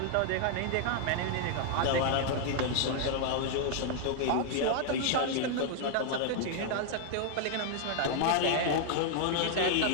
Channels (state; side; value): different; both; correlation 0.00